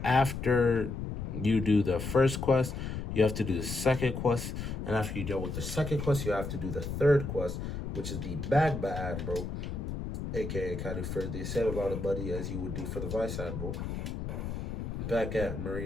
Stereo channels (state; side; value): noise; left; rumble, 5 dB below the sound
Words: After you do the first quest, you have to do the second quest. And after you deal with the second quest, you have to do the third quest, which is the Magma Admiral, aka kind of for the same amount of money as you would do for the Vice Admiral, back at